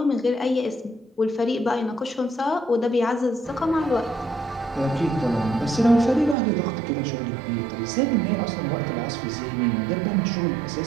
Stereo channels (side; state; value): left; drops out; at 6.4 s